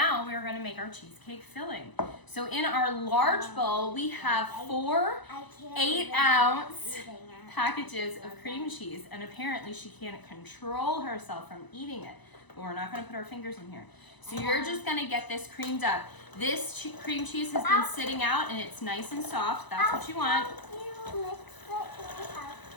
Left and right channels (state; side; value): late; right; 1.0 ms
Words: we're going to make our cheesecake filling. So in our large bowl, we have 4 I can't 8-ounce eating it. packages of cream cheese, and apparently she can't control herself from eating it, but we're not going to put our fingers in here. So you're just going to get this creamed up. This cream cheese has been sitting out and it's nice and soft. That's what you want. You mix it with